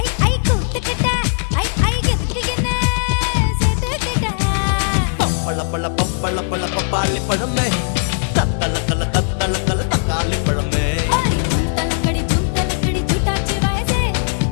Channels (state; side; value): silent; right; digital silence